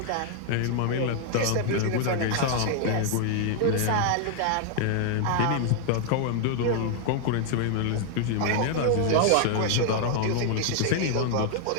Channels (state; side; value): different; both; correlation 0.00